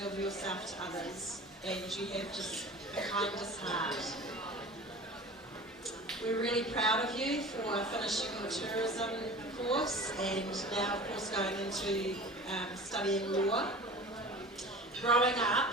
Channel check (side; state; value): both; normal; correlation 0.38